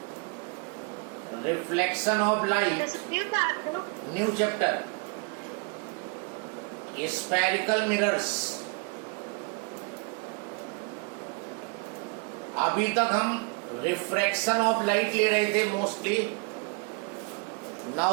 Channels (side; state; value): left; quieter; 32.9 dB